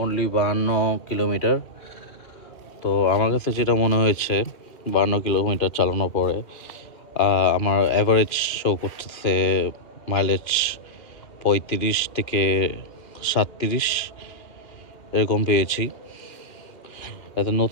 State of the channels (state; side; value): late; right; 2.6 ms